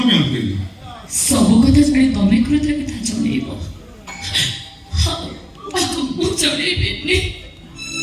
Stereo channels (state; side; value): identical; both; correlation 1.00